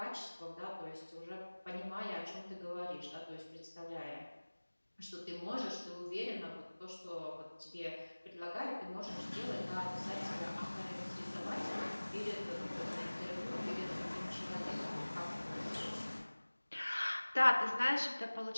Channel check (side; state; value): both; inverted; correlation -1.00